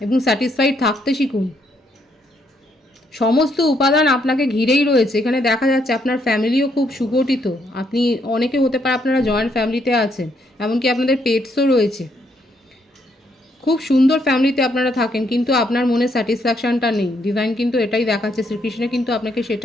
এবং স্যাটিসফাইড থাকতে শিখুন। সমস্ত উপাদান আপনাকে ঘিরেই রয়েছে। এখানে দেখা যাচ্ছে আপনার ফ্যামিলিও খুব সুগঠিত, আপনি অনেকে হতে পারে আপনারা জয়েন্ট ফ্যামিলিতে আছেন, এমনকি আপনাদের পেটসও রয়েছে, খুব সুন্দর ফ্যামিলিতে আপনারা থাকেন, কিন্তু আপনার মনে স্যাটিসফ্যাকশানটা নেই। ডিভাইন কিন্তু এটাই দেখাচ্ছে, শ্রীকৃষ্ণ কিন্তু আপনাকে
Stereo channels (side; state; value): both; normal; correlation 0.73